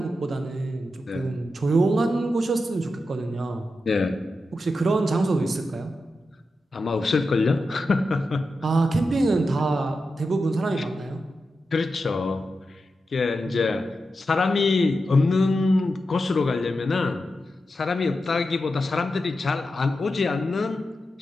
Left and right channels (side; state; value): both; normal; correlation 0.89